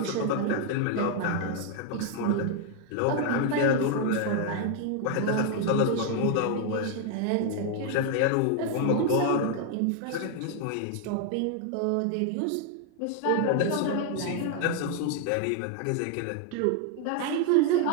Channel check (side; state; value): both; different; correlation 0.00